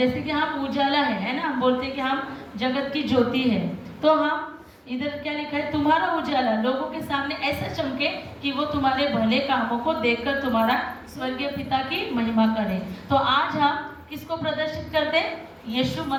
कि हम उजाला है ना, हम बोलते हैं कि हम जगत की ज्योति है, तो हम इधर क्या लिखा है, तुम्हारा उजाला लोगों के सामने ऐसा चमके कि वो तुम्हारे भले कामों को देखकर तुम्हारा स्वर्गीय पिता की महिमा करे। तो आज हम किसको प्रदर्शित करते हैं? यीशु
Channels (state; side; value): identical; both; correlation 1.00